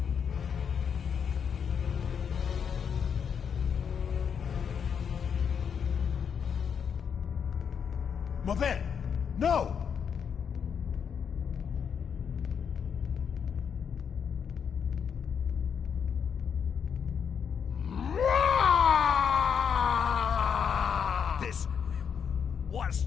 Maven! No! This was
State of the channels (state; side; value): quieter; right; 7.1 dB